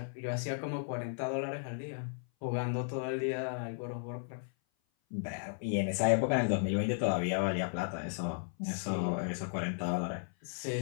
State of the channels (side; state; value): right; silent; 54 dB below the other